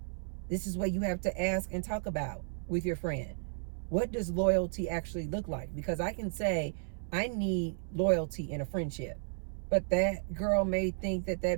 This is what you have to ask and talk about with your friend. What does loyalty actually look like? Because I can say, I need loyalty in a friendship. But that girl may think that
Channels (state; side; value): silent; left; 55 dB below the other